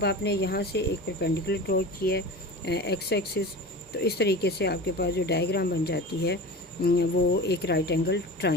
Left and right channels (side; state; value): both; normal; correlation 0.33